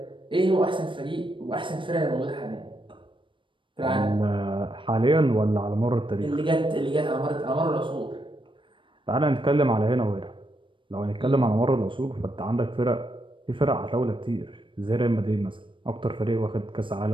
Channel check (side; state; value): left; late; 0.24 ms